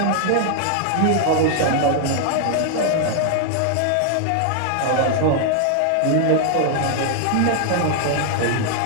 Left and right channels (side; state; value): both; different; correlation 0.00